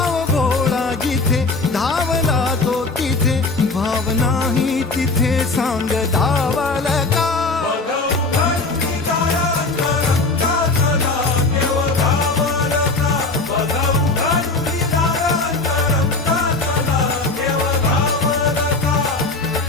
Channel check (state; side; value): quieter; right; 3.5 dB